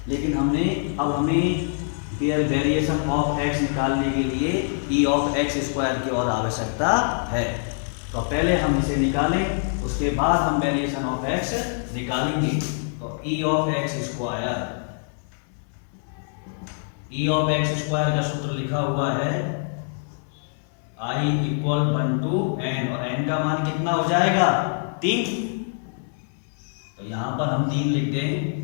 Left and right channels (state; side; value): silent; right; digital silence